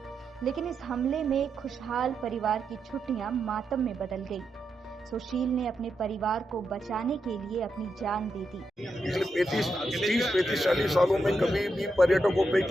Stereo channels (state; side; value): normal; both; correlation 0.84